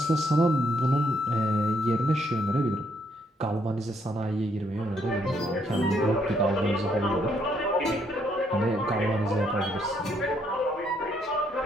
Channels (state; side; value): normal; both; correlation 0.72